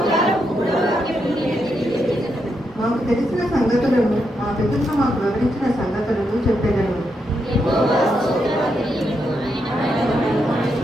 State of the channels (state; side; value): normal; both; correlation 0.82